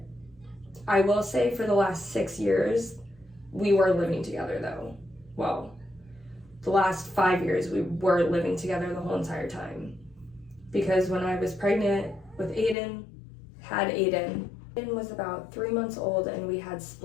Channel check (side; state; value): right; drops out; at 12.8 s